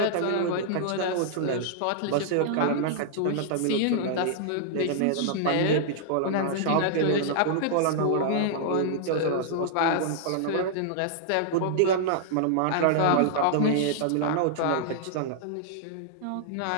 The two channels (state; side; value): different; both; correlation -0.01